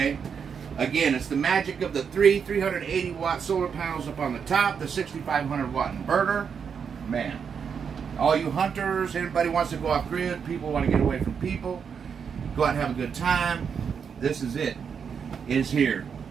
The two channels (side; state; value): left; quieter; 6.7 dB